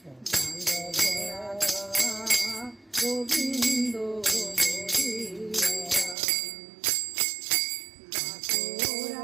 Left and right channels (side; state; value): left; drops out; at 6.2 s